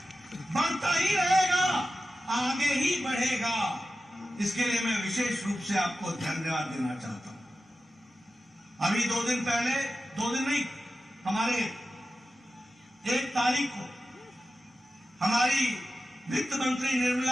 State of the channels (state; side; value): normal; both; correlation 0.93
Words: बढ़ता ही रहेगा, आगे ही बढ़ेगा। इसके लिए मैं विशेष रूप से आपको धन्यवाद देना चाहता हूं। अभी 2 दिन पहले, 2 दिन नहीं, हमारे 1 तारीख को हमारी वित्त मंत्री